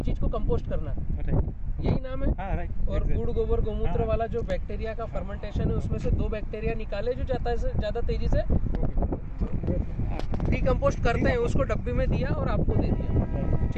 चीज को कंपोस्ट करना, यही नाम है। और गुड़ गोबर गोमूत्र वाला जो बैक्टीरिया का फर्मेंटेशन है, उसमें से 2 बैक्टीरिया निकाले जो ज्यादा तेजी से डिकम्पोस्ट करते हैं, उसको डब्बी में दिया और आपको दे दिया।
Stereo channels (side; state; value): both; identical; correlation 1.00